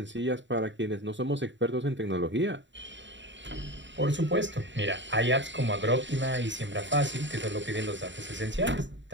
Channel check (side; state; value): left; late; 0.54 ms